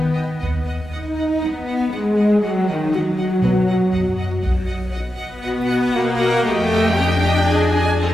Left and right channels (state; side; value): normal; both; correlation 0.89